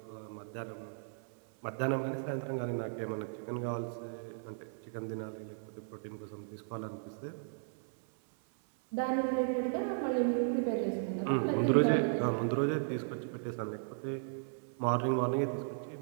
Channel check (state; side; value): silent; left; 54 dB below the other